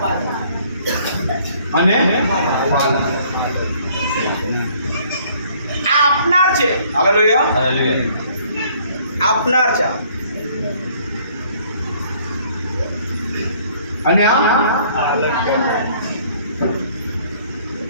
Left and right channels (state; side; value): inverted; both; correlation -0.60